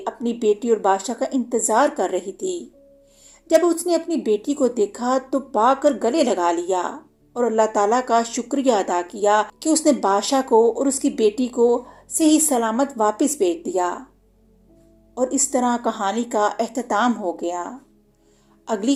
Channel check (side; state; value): both; identical; correlation 1.00